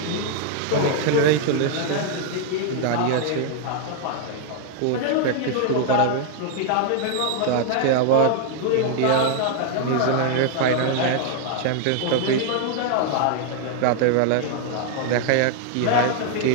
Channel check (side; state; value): both; different; correlation 0.00